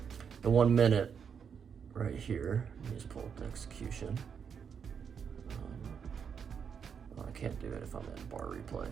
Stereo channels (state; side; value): quieter; left; 7.0 dB